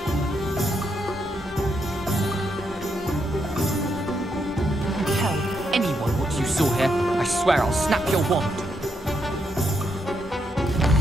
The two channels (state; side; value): normal; both; correlation 0.80